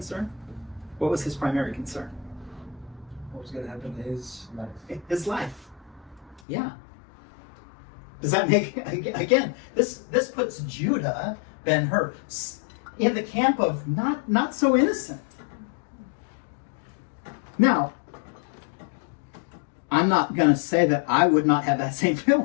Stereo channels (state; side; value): drops out; right; at 6.4 s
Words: What was his primary concern? What was going to happen to his life? His life. Yeah. Does that make, again, this puts Judah Ben-Hur in the camp of not so innocent. Now, I'm not going to say that I would not have that same